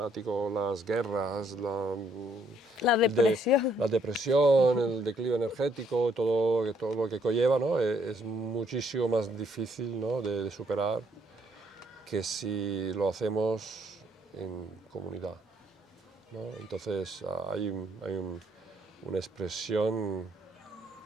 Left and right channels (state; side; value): normal; both; correlation 0.69